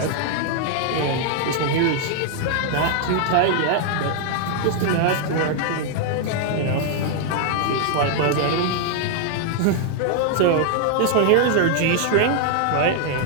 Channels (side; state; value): both; different; correlation 0.00